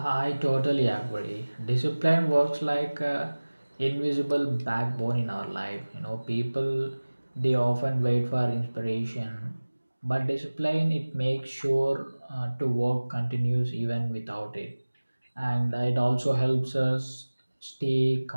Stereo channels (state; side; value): inverted; both; correlation -1.00